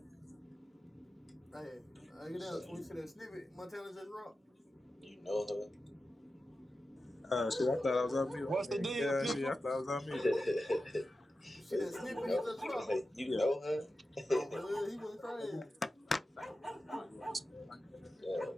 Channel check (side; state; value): both; normal; correlation 0.92